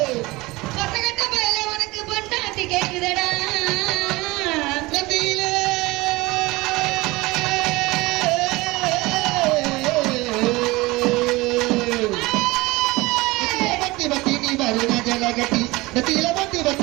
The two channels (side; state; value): left; quieter; 21.7 dB